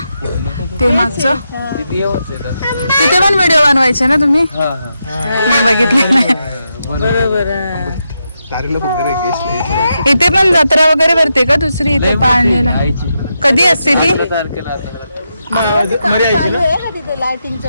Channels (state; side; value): inverted; both; correlation -0.85